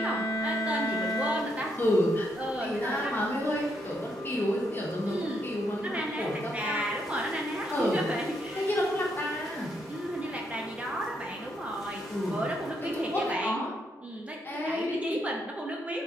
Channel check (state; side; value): normal; both; correlation 0.77